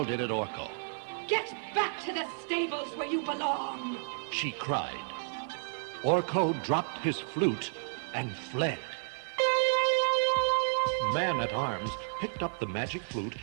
it at Orko. Get back to the stables where you belong! She cried. Orko dropped his flute and fled. Man-at-Arms picked up the magic flute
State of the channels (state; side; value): silent; left; 57 dB below the other